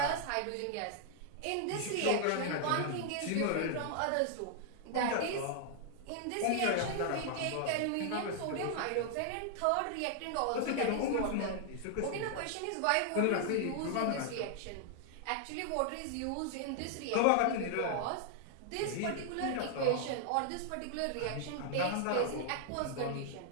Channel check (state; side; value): different; both; correlation 0.00